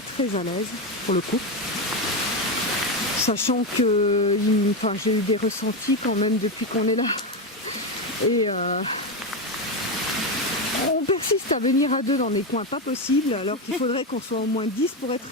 à l'aise pour le coup. Sachant que j'ai eu des ressentis quand même depuis qu'on est là. Et on persiste à venir à 2 dans des coins pas possibles alors qu'il faudrait qu'on soit au moins 10 pour être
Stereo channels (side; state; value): both; normal; correlation 0.11